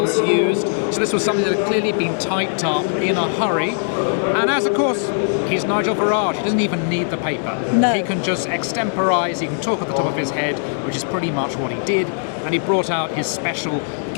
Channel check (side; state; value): right; silent; 60 dB below the other